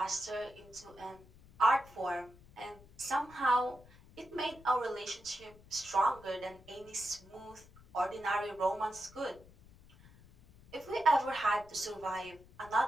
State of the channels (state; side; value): noise; left; rumble, 23 dB below the sound